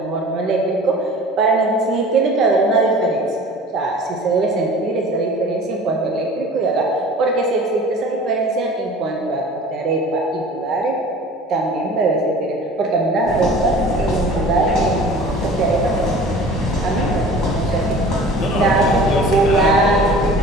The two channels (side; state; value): both; normal; correlation 0.43